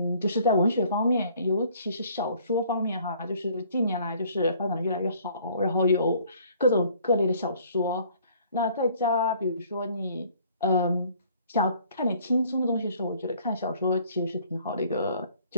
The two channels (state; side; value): inverted; both; correlation -0.58